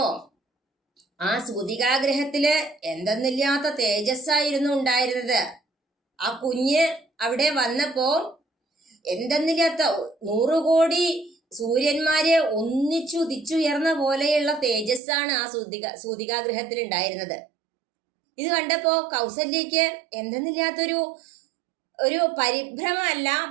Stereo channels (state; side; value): drops out; left; at 15.0 s